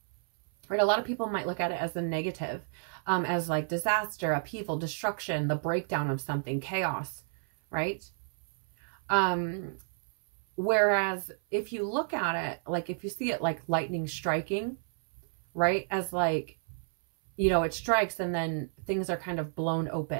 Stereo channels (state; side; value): silent; left; 57 dB below the other